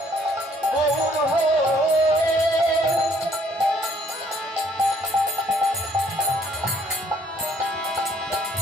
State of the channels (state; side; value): normal; both; correlation 0.63